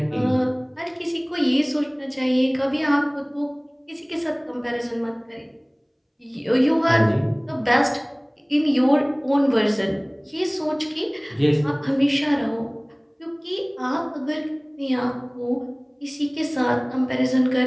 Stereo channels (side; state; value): both; identical; correlation 1.00